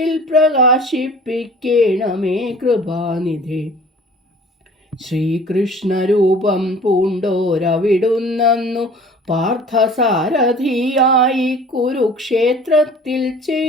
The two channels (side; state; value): both; normal; correlation 0.47